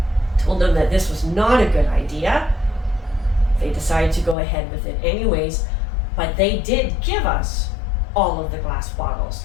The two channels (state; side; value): drops out; right; at 4.4 s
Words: told them that this was not a good idea. They decided to go ahead with it anyways, but they did give us all of the glass bottles.